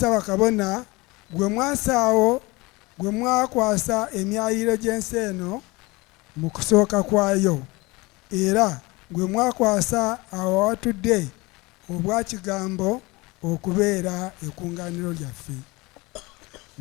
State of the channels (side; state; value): right; quieter; 23.5 dB